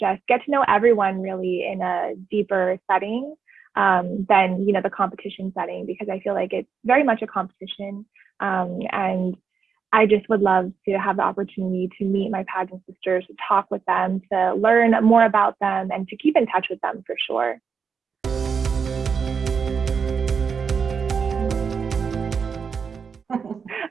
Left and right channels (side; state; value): left; quieter; 6.1 dB